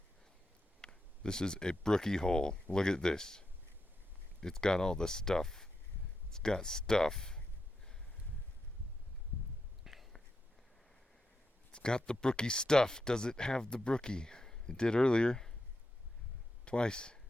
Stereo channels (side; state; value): both; normal; correlation 0.86